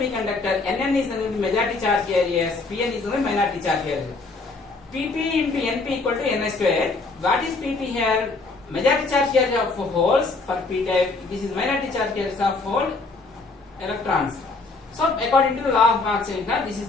Nn is the majority charge carriers, Pn is the minority charge carrier. Pp into Np equal to Ni square. What is Pp here? Majority charge carrier of holes for P type. This is minority charge carriers of hole electrons. So according to the law of Planck's semiconductor, this is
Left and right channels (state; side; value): quieter; right; 3.7 dB